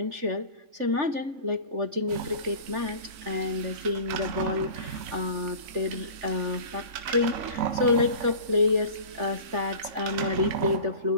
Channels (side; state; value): left; late; 4.0 ms